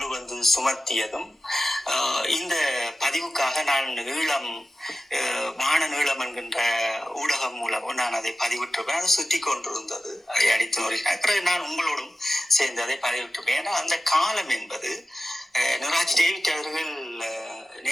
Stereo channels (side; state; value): both; normal; correlation 0.94